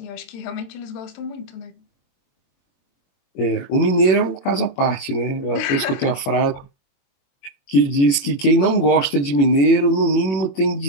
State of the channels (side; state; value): right; late; 21 ms